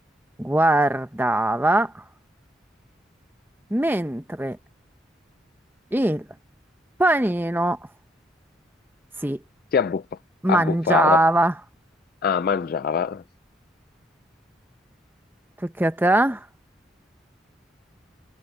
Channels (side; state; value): both; normal; correlation 0.67